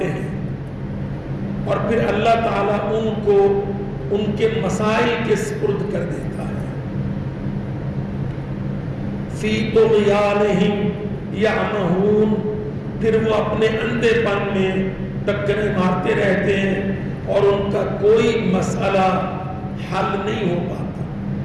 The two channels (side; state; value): both; identical; correlation 1.00